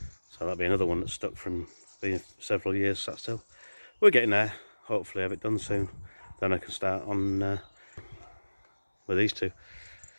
So that'll be another one that's stuck from being several years sat still. We're getting there. Hopefully have it done soon. Then I can start on with these two.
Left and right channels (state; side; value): inverted; both; correlation -1.00